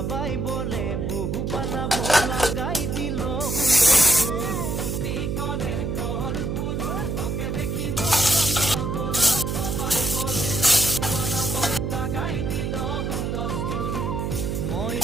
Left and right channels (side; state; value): right; noise; hum, 1 dB below the sound